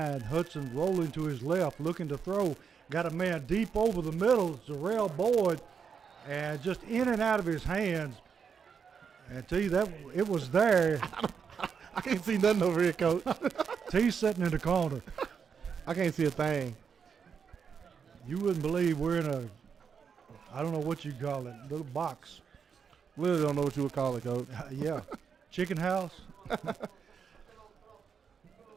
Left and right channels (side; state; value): left; quieter; 6.5 dB